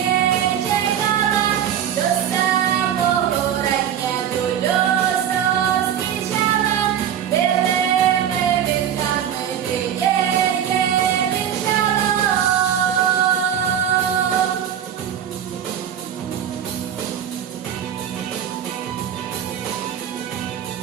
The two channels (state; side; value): quieter; left; 9.5 dB